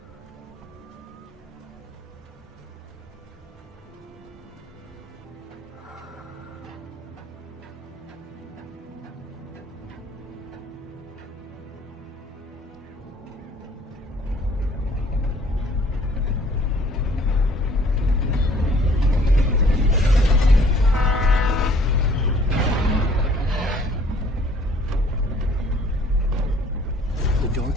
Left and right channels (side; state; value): both; normal; correlation 0.57